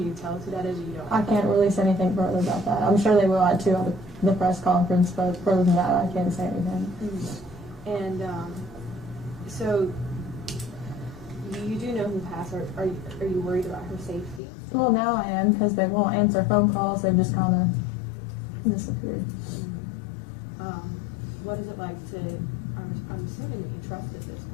tell us who that is, or you don't? I can't release anything further about that. I'm sure they will at the press conference, but further than that, I can't say anything. Mm-hmm. And so you do know who has her. Are you worried about her safety? Well, now I am, because they won't answer phone calls. They've just kind of disappeared. Mm-hmm. What is it like to? I'm assuming that you trusted this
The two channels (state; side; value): drops out; right; at 14.4 s